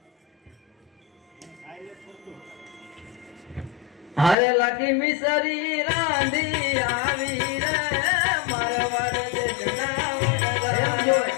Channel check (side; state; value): right; drops out; at 4.4 s